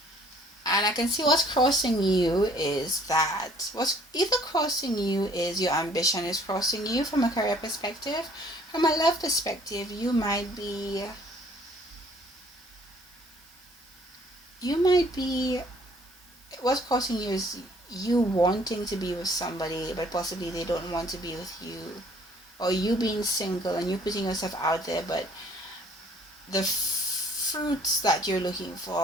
And I can see what's crossing you is that what's either crossing you is your ambition is crossing you from a career perspective. From a love perspective, you might be what's crossing you is you wanting to be with somebody, but possibly they don't want to be with you, or you being single and you putting yourself out there, but the fruits that you're looking for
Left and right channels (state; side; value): normal; both; correlation 0.58